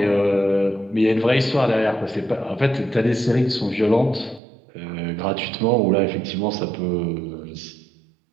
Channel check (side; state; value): left; drops out; at 4.4 s